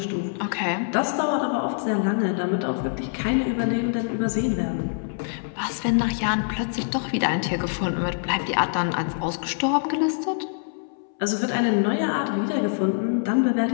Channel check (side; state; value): right; silent; 62 dB below the other